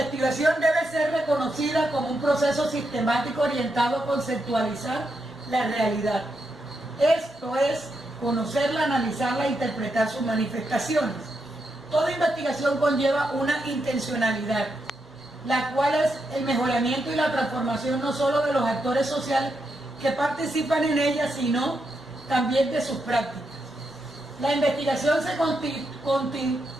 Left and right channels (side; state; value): both; normal; correlation 0.83